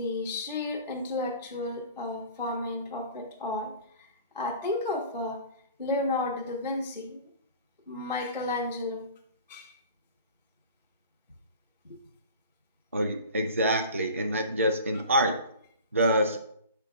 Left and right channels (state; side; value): inverted; both; correlation -0.41